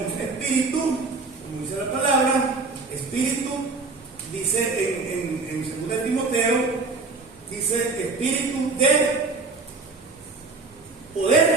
espíritu, como dice la palabra, espíritu, dice en 2 Timoteo, dice espíritu de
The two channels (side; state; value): left; quieter; 3.9 dB